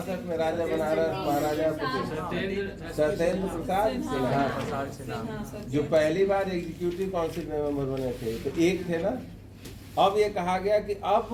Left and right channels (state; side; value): identical; both; correlation 1.00